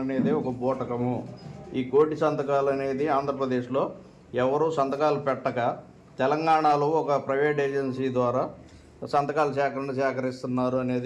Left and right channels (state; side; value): identical; both; correlation 1.00